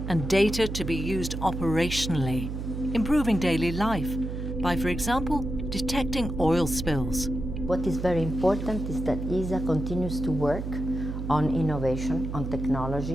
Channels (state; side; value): noise; right; hum, 5 dB below the sound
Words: and data to be used operationally, improving daily life by, for example, detecting oil spills. What is very important is that ESA continues to work on innovation, on